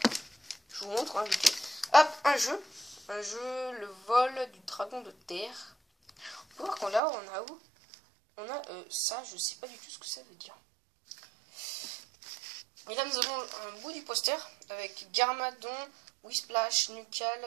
je vous montre, hein, vite. Hop, un jeu, le vol du dragon de terre. On peut voir qu'on l'a, on a où? On a ça, je sais pas du tout ce que ça veut dire. Et là nous avons un bout du poster avec Garmadon, Whisplash,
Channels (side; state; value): left; drops out; at 7.0 s